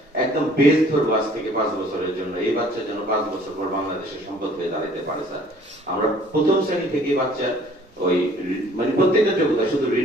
একদম বেস ধরবো আজ থেকে 5 বছরের জন্য। এই বাচ্চা যেন 5 বছর পর বাংলাদেশের সম্পদ হয়ে দাঁড়াতে পারে স্যার। আমরা প্রথম শ্রেণী থেকে বাচ্চার ওই মানে প্রত্যেকটা যোগ্যতা, শুধু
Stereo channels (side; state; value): both; normal; correlation 0.55